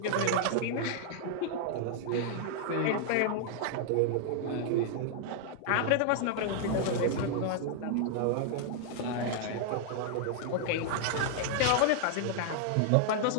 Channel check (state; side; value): different; both; correlation -0.01